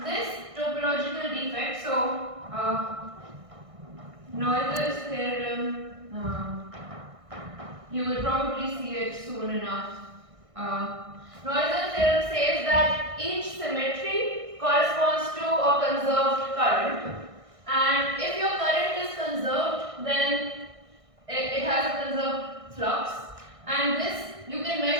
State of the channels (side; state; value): left; late; 1.6 ms